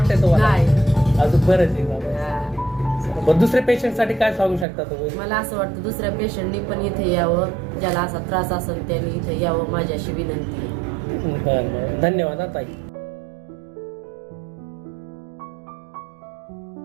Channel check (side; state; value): left; drops out; at 4.7 s